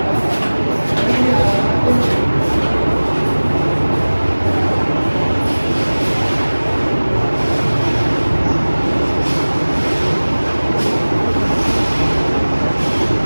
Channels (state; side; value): inverted; both; correlation -1.00